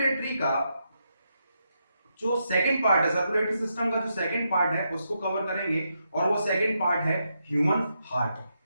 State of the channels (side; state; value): both; inverted; correlation -0.82